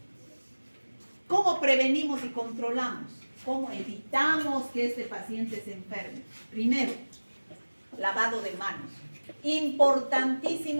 ¿Cómo prevenimos y controlamos? ¿Cómo evitamos que este paciente se enferme? Primero, lavado de manos.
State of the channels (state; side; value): inverted; both; correlation -1.00